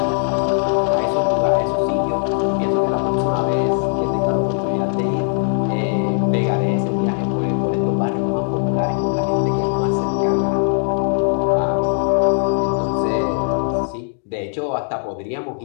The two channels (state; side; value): silent; right; digital silence